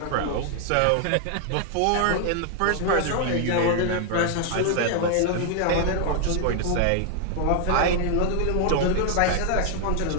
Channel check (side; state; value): both; different; correlation 0.00